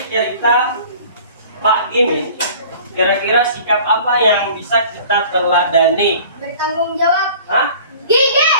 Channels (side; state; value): both; inverted; correlation -0.47